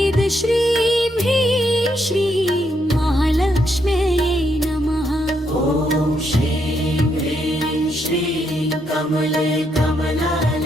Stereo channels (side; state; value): both; normal; correlation 0.77